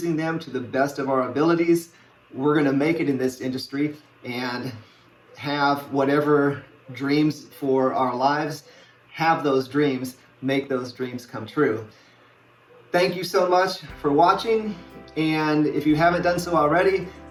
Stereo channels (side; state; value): both; identical; correlation 1.00